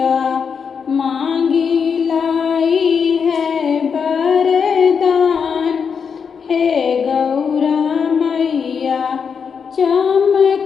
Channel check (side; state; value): right; quieter; 6.3 dB